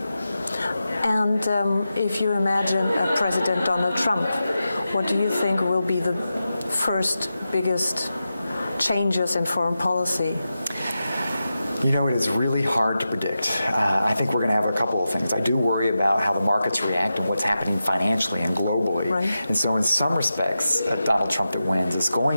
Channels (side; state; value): both; inverted; correlation -0.91